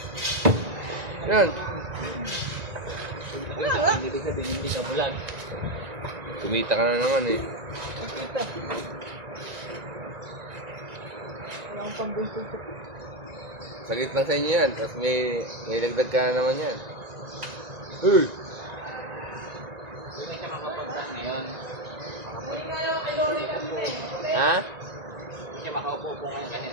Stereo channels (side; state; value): left; late; 1.9 ms